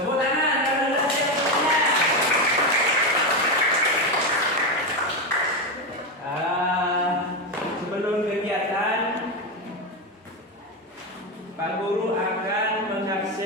tangan kalau sudah siap semuanya. Sebelum kegiatan, Pak Guru akan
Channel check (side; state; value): both; normal; correlation 0.12